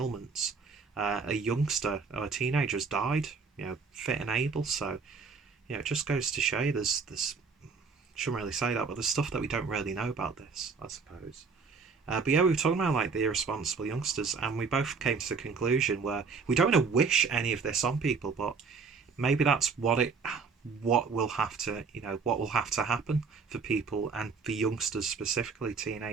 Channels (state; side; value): quieter; left; 5.1 dB